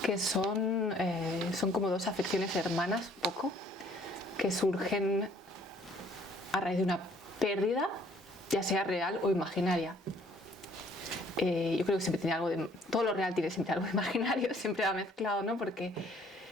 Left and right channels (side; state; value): both; normal; correlation 0.60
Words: que son como dos afecciones hermanas, un poco, que surgen a raíz de una pérdida, ya sea real o imaginaria. Yo creo que siempre tiene algo de... Todo lo real tiene siempre algo de imaginario, siempre va mezclado, ¿no? Porque